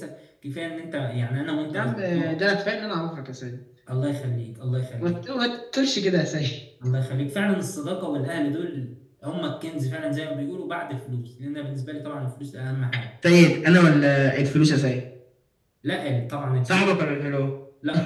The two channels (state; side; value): identical; both; correlation 1.00